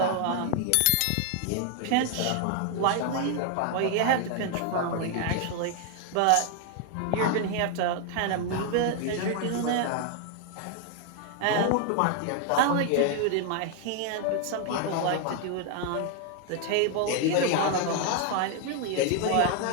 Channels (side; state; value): both; different; correlation 0.00